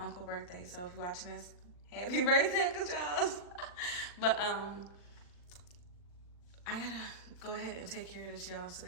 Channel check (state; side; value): late; right; 40 ms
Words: birthday. So if you're watching this, happy birthday, Uncle Charles. But I gotta go ahead and take care of this, y'all. So